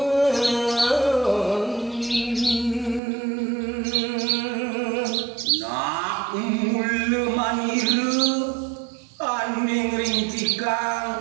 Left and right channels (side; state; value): left; drops out; at 3.0 s